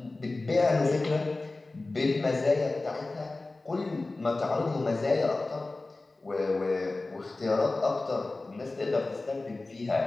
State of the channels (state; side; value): quieter; right; 3.2 dB